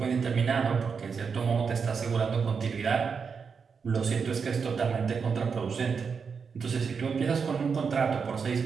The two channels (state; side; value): quieter; left; 5.8 dB